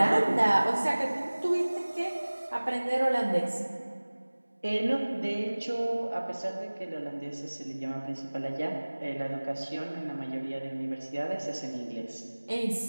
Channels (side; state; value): both; inverted; correlation -1.00